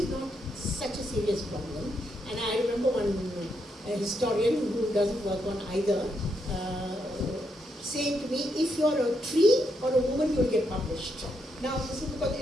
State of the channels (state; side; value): normal; both; correlation 0.79